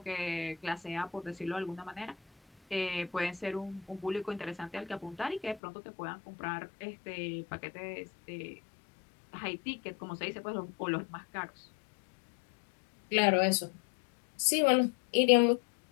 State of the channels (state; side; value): drops out; right; at 5.6 s